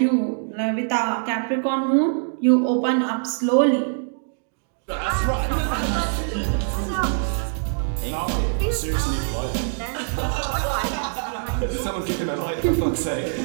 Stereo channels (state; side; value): silent; left; digital silence